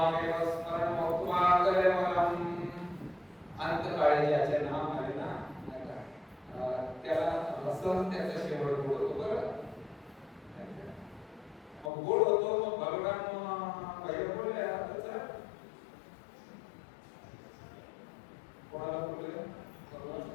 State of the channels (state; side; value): drops out; right; at 11.9 s